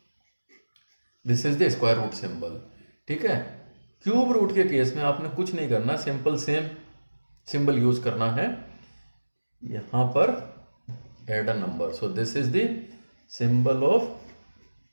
this is the square root symbol, ठीक है। क्यूब रूट के केस में आपने कुछ नहीं करना, सिंपल सेम सिंबल यूज करना है, यहां पर add a number, so this is the symbol of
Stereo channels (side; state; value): both; inverted; correlation -1.00